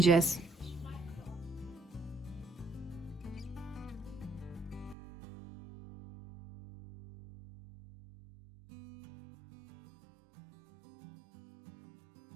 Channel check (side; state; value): left; drops out; at 5.0 s